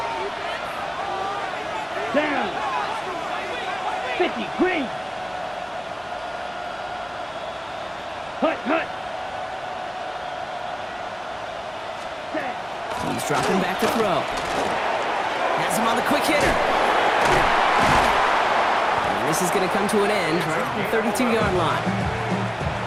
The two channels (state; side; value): identical; both; correlation 1.00